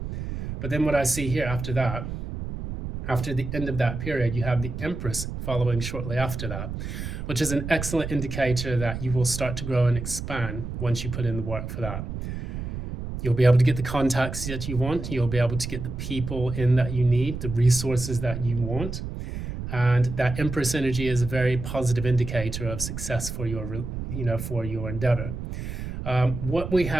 But then what I see here after that, after the end of that period, you have the Empress following shortly after that, which is an excellent indicator that you will start to grow and expand once you put in the work for that. You'll be able to get the contacts that you want. You'll be able to get the people in that you need, the resources that you want. And that Empress energy is a very positive indicator of success for your, for your endeavor. What we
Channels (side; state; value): right; noise; rumble, 6 dB below the sound